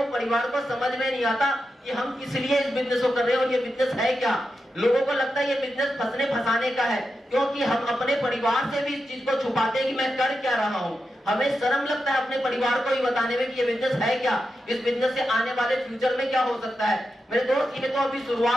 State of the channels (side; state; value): both; normal; correlation 0.88